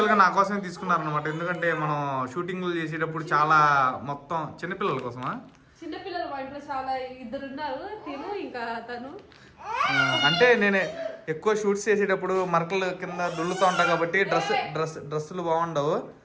నా కోసమే తీసుకున్నారనమాట, ఎందుకంటే మనం షూటింగ్లు చేసేటప్పుడు చాలా మొత్తం చిన్నపిల్లల కోసమా. చిన్నపిల్లలు మా ఇంట్లో చాలా 2 ఉన్నారు, తిను ఇంకా తను. అంటే నేను ఎక్కువ షూట్స్ చేసేటప్పుడు మరకలు కింద దుల్లుతూ ఉంటా కాబట్టి డ్రెస్సులు బాగుండవు.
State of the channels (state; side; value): identical; both; correlation 1.00